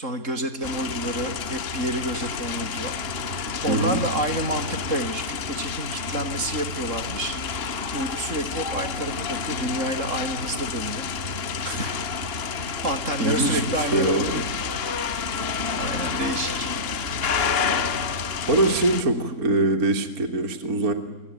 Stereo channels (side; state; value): left; late; 3.6 ms